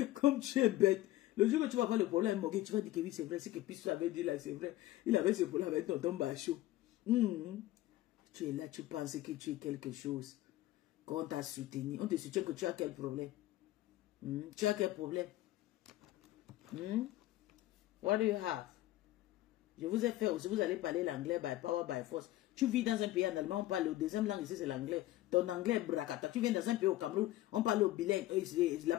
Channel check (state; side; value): quieter; right; 15.9 dB